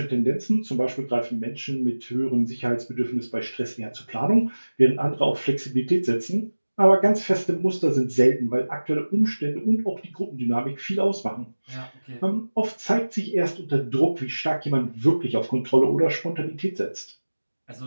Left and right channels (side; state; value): both; inverted; correlation -1.00